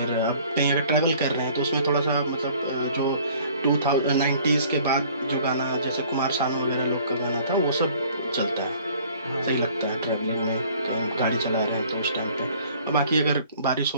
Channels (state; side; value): inverted; both; correlation -0.54